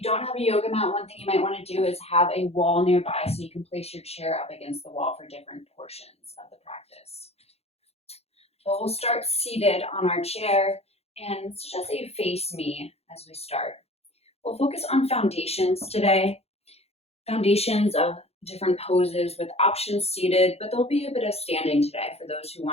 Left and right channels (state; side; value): late; right; 0.30 ms